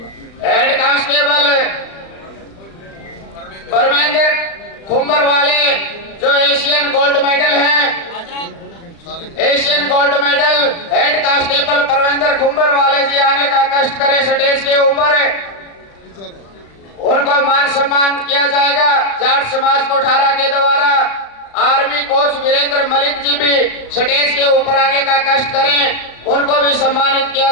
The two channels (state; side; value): late; right; 36 ms